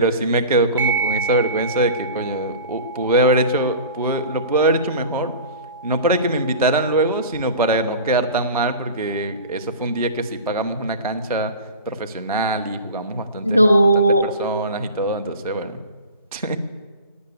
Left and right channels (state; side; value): inverted; both; correlation -0.37